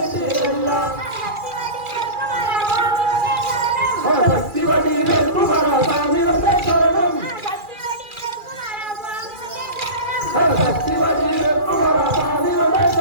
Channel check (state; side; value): late; left; 2.4 ms